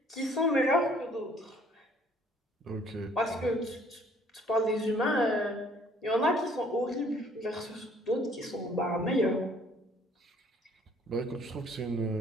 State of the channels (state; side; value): normal; both; correlation 0.59